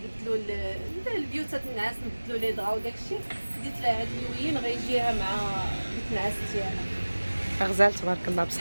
البيوتات النعاس، نبدلوا لي دغا وداكشي. خديت لها هاد اللوين غيجيها مع النعاس ديالها. غزال تبارك الله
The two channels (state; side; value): inverted; both; correlation -1.00